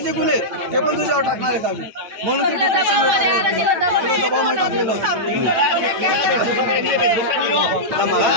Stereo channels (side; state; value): left; late; 9.0 ms